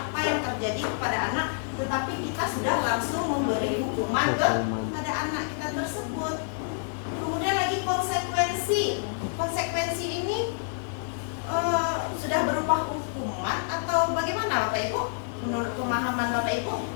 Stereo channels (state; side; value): silent; right; digital silence